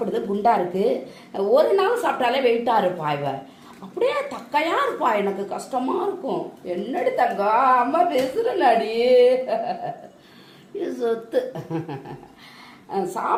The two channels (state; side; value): identical; both; correlation 1.00